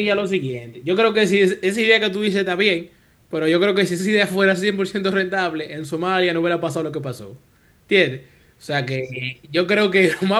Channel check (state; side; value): identical; both; correlation 1.00